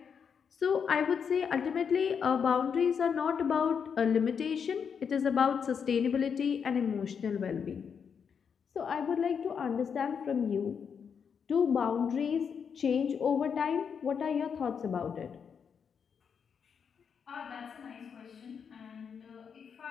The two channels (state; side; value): quieter; right; 6.8 dB